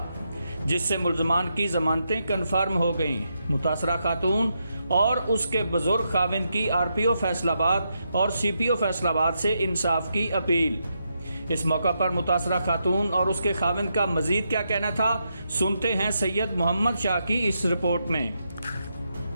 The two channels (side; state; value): both; inverted; correlation -0.82